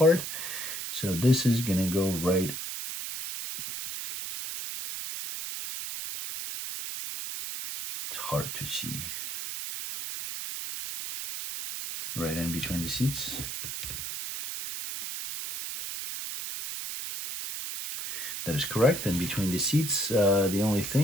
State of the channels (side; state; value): right; noise; hiss, 6 dB below the sound